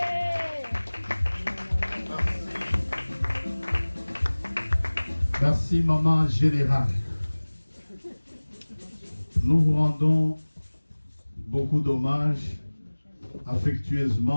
Merci, maman générale. Nous vous rendons beaucoup d'hommages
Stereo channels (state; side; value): inverted; both; correlation -1.00